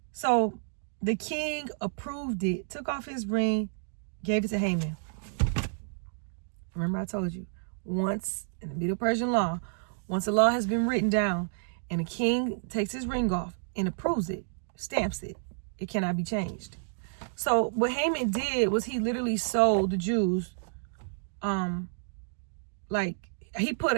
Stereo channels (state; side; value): silent; left; digital silence